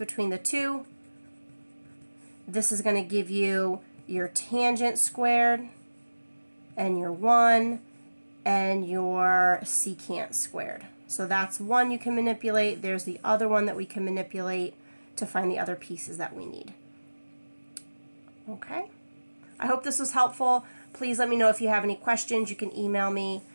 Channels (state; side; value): inverted; both; correlation -1.00